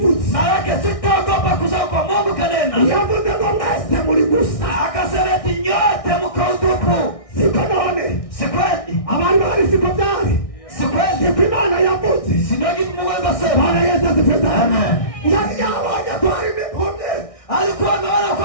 Maana sitaogopa kusema kwa Mungu kanena. Yavuze kwa mwese muri gusa. Akasema eti nyote mko utupu. Siko none. Sikweli. Abari bari siko byari. Sikweli. Siko Imana yavuze. Sindogi Mungu akasema. Bwana Yesu asifiwe sana. Amen. Yawaje twari mipombe. Alikuwa ameona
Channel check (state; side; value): late; right; 1.6 ms